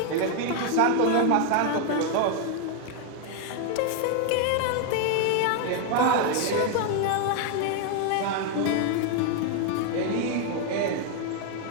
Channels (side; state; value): both; different; correlation 0.00